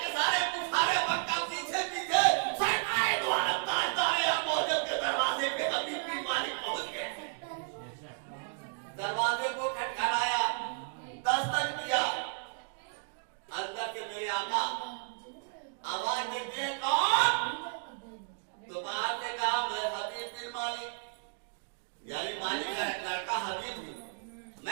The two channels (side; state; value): left; silent; digital silence